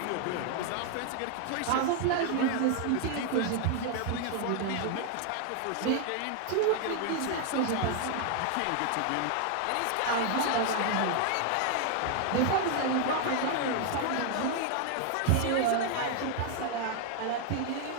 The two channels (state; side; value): different; both; correlation 0.00